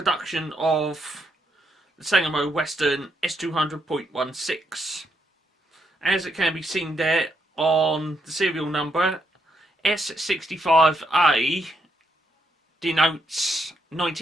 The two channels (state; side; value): normal; both; correlation 0.77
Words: of the Sangamo Weston S200.16. As it can be seen there on the serial number, S65A denotes